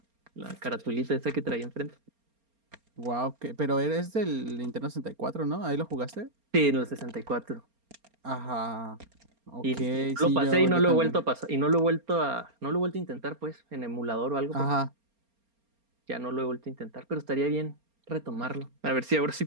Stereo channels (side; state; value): left; late; 4.3 ms